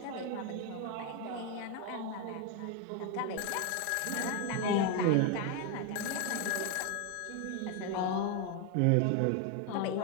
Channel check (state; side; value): different; both; correlation 0.02